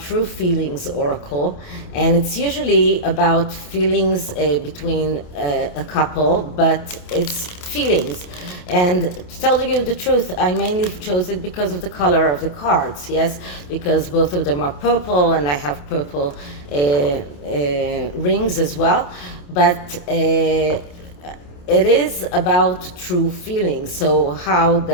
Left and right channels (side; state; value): right; late; 28 ms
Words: feelings oracle, and it's usually about feelings between a couple, but it's feelings. And to tell you the truth, I mainly chose it because of the color of the cards, yes, because both of them are purple, and I have purple rings as well, but it is about true feelings. So how